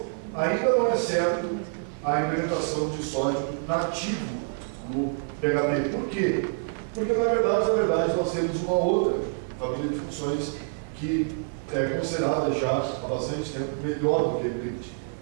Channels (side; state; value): left; silent; 56 dB below the other